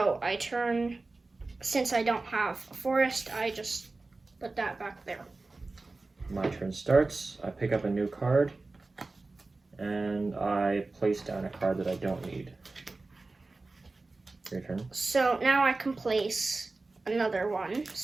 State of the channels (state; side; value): quieter; left; 3.4 dB